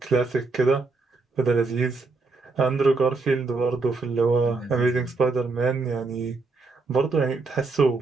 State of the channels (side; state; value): left; quieter; 3.8 dB